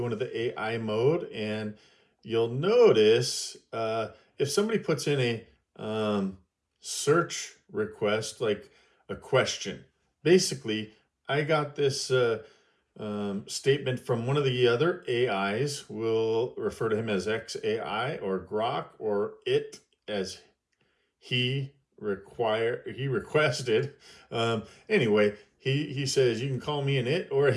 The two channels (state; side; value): identical; both; correlation 1.00